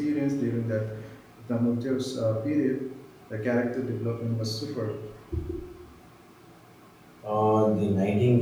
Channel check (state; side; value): identical; both; correlation 1.00